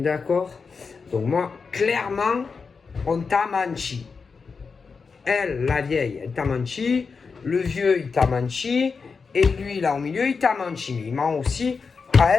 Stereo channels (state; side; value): quieter; right; 5.1 dB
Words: Donc, moi, clairement, on t'a menti. Elle, la vieille, elle t'a menti. Le vieux, il t'a menti. Et lui, là, au milieu, il t'a menti. Mais il ment aussi à